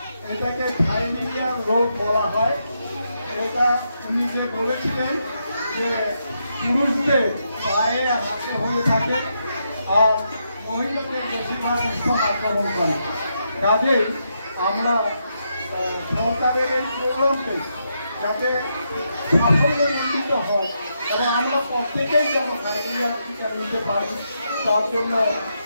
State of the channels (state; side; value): inverted; both; correlation -0.81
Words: এটাকে থাইলেরিয়া রোগ বলা হয়। এটা উনি যে বলেছিলেন যে পুরুষদের পায়ে হাতে হয়ে থাকে আর মহিলাদের বেশিরভাগ স্তন আক্রমণ করে। কাজেই আমরা সরকারের এই প্রোগ্রামকে যাতে সাফল্যমণ্ডিত হয় এবং আমরা প্রত্যেকেই যেন থাইলেরিয়া টিকা নিতে পারি, তার জন্য